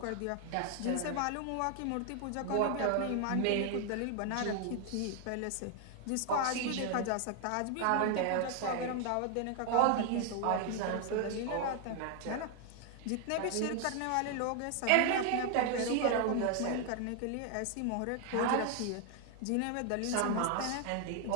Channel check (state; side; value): different; both; correlation 0.00